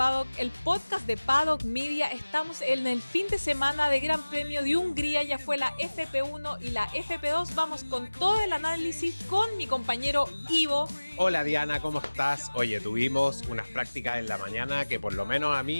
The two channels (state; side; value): inverted; both; correlation -1.00